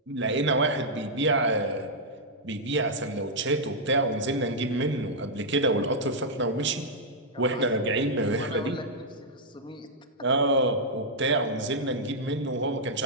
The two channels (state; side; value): normal; both; correlation -0.07